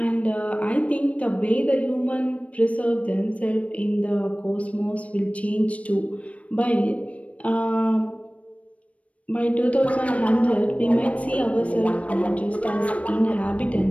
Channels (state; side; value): late; right; 0.065 ms